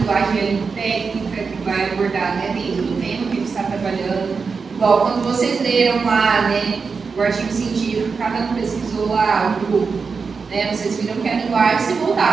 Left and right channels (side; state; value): left; quieter; 5.1 dB